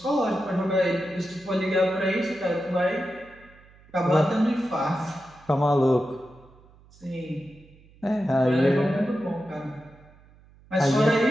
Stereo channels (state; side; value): noise; right; hum, 27 dB below the sound